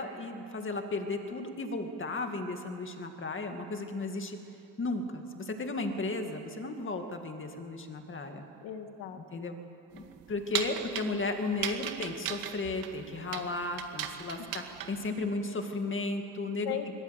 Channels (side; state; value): both; normal; correlation 0.26